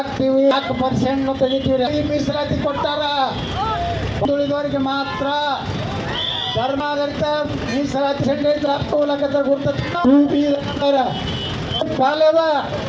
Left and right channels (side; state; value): both; identical; correlation 1.00